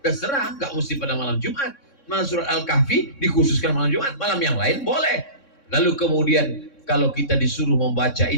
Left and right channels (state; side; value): late; right; 3.6 ms